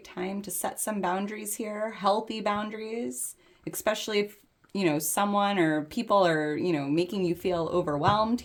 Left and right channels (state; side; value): identical; both; correlation 1.00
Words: time to set some boundaries here, healthy boundaries, especially if, someone or people are, making you feel overwhelmed